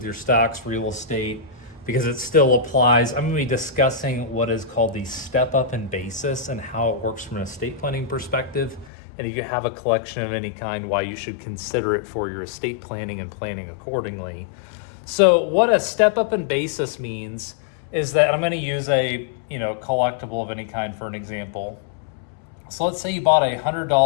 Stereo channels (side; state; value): right; drops out; at 8.9 s